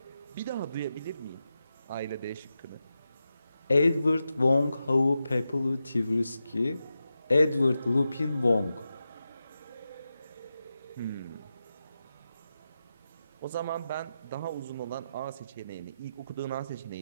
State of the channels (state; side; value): inverted; both; correlation -0.90